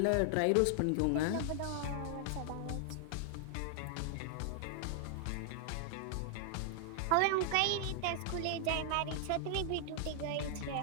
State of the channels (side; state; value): both; different; correlation 0.00